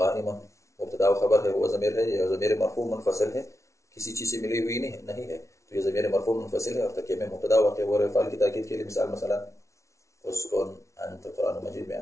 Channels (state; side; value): late; right; 0.14 ms